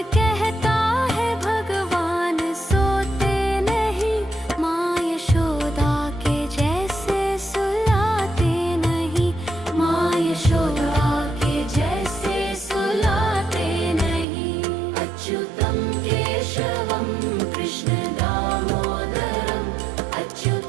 कहता है भगवान सोते नहीं, माँ यशोदा के जैसे सुलाते नहीं, माँ यशोदा के जैसे सुलाते नहीं। अच्युतं केशवं कृष्ण दामोदरं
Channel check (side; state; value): left; drops out; at 14.2 s